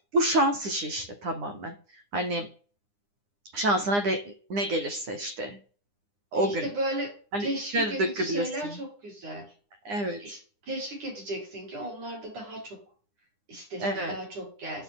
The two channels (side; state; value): left; late; 9.8 ms